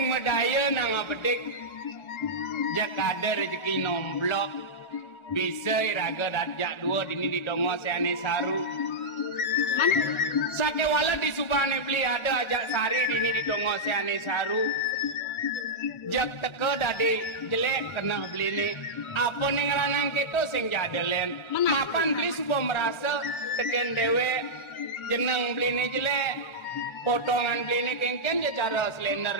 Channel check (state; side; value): late; right; 1.3 ms